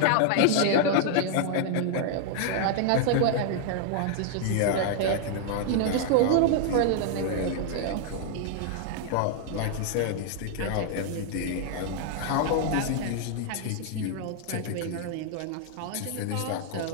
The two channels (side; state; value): both; different; correlation 0.00